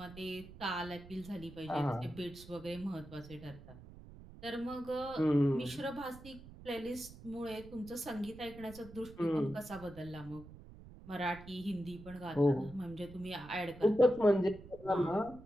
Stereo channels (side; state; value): right; noise; rumble, 17 dB below the sound